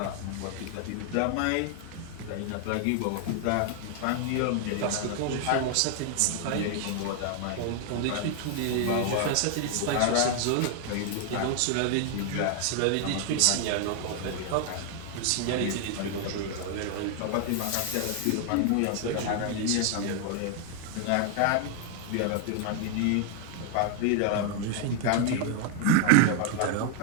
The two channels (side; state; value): both; different; correlation 0.00